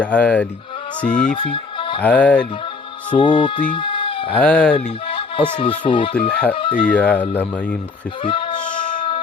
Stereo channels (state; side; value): quieter; right; 4.3 dB